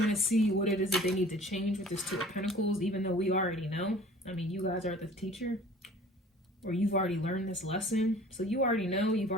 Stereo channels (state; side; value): normal; both; correlation 0.48